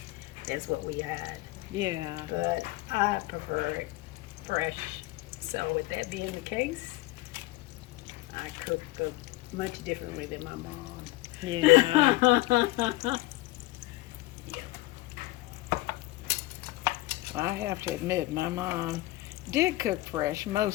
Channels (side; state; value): right; quieter; 18.8 dB